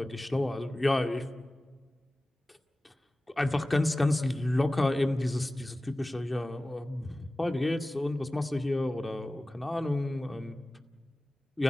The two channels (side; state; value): both; normal; correlation 0.97